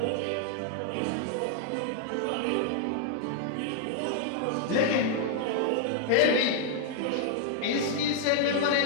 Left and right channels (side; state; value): both; different; correlation 0.00